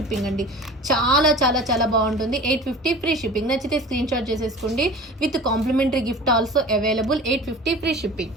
అండి. చాలా బాగుంటుంది. 850 ఫ్రీ షిప్పింగ్. నచ్చితే స్క్రీన్ షాట్ చేసేసుకోండి. With complimentary gift also available. 850 free shipping.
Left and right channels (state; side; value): normal; both; correlation 0.39